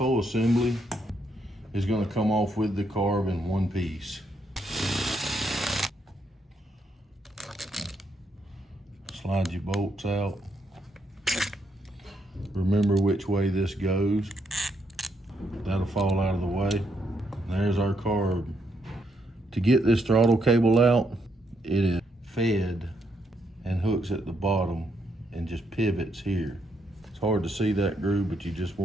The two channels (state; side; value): normal; both; correlation 0.77